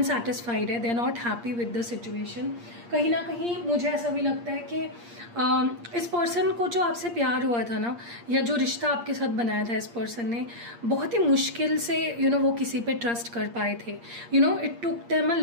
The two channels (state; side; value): late; left; 8.5 ms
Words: है, they are not happy with the situation. कहीं ना कहीं मुझे ऐसा भी लगता है कि इस पर्सन को जो आपसे प्यार हुआ था ना, या जो रिश्ता आपके साथ बनाया था इस पर्सन ने, बहुत ही मुश्किल से वो किसी पे ट्रस्ट कर पाए थे। It took them a